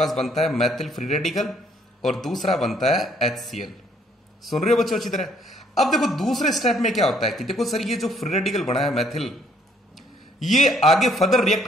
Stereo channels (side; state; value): both; normal; correlation 0.66